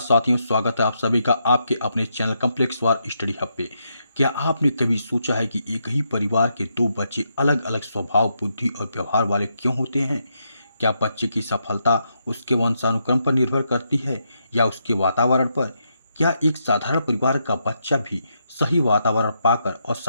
स्वागत है आप सभी का आपके अपने चैनल कॉम्प्लेक्स वार स्टडी हब पे। क्या आपने कभी सोचा है कि एक ही परिवार के दो बच्चे अलग अलग स्वभाव, बुद्धि और व्यवहार वाले क्यों होते हैं? क्या बच्चे की सफलता उसके वंशानुक्रम पर निर्भर करती है या उसके वातावरण पर? क्या एक साधारण परिवार का बच्चा भी सही वातावरण पाकर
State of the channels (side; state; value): both; inverted; correlation -0.80